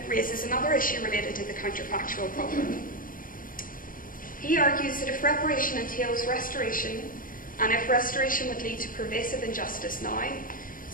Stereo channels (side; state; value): right; late; 0.40 ms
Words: raises another issue related to the counterfactual problem. He argues that if reparation entails restoration, and if restoration would lead to pervasive injustice now,